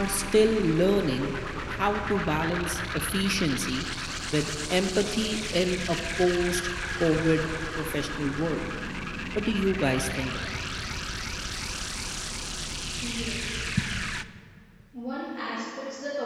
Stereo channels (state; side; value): identical; both; correlation 1.00